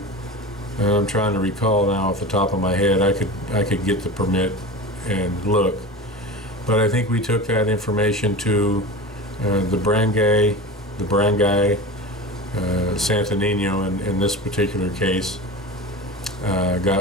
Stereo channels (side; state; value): both; normal; correlation 0.31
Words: I'm trying to recall now off the top of my head. I could get the permit and look, but I think we took that information to the barangay, Santo Nino in this particular case.